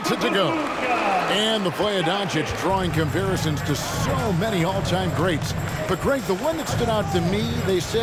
it to go. And the play of Doncic drawing comparisons to so many all-time greats. But Greg, the one that stood out to me, they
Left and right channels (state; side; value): identical; both; correlation 1.00